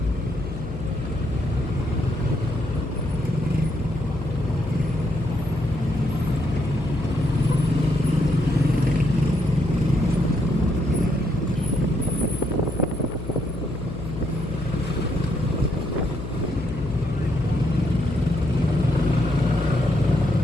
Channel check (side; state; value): left; noise; hum, 8 dB below the sound